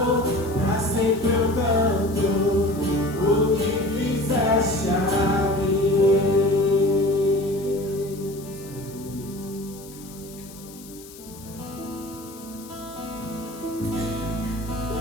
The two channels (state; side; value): noise; left; hiss, 19 dB below the sound